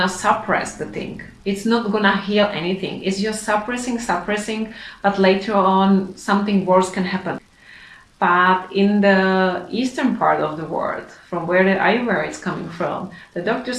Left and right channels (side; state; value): both; identical; correlation 1.00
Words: suppress the thing. It's not gonna heal anything. It's just suppressing, but later on something worse can happen. But in the eastern part of the world, from where the Ayurveda is coming from, the doctor